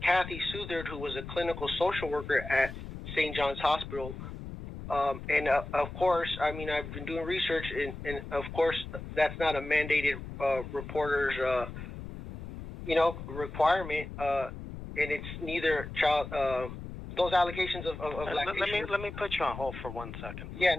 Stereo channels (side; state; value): left; noise; rumble, 10 dB below the sound